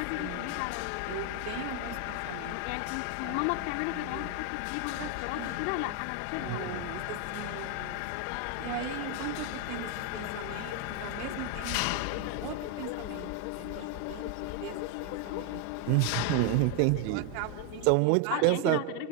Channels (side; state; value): both; different; correlation 0.01